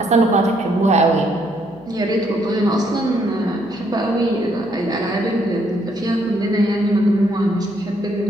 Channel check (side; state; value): right; noise; hum, 28 dB below the sound